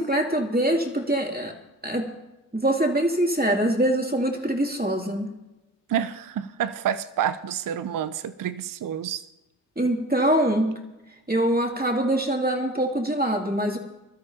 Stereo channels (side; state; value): both; normal; correlation 0.39